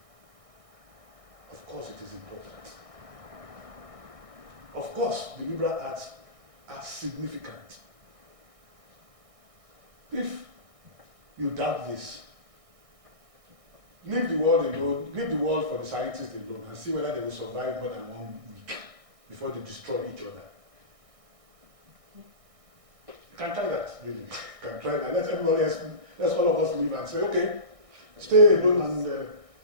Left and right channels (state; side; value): late; left; 1.6 ms